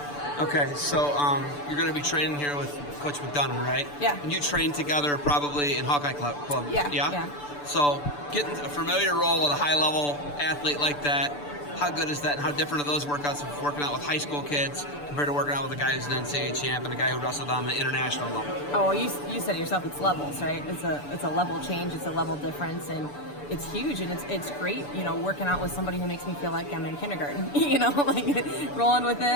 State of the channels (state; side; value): late; right; 6.9 ms